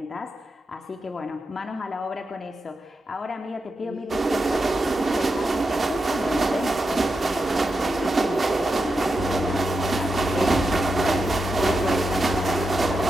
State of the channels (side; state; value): both; normal; correlation 0.88